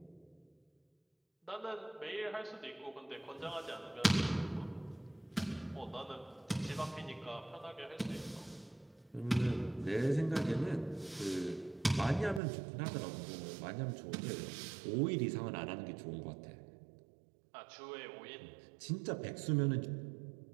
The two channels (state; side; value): drops out; left; at 12.4 s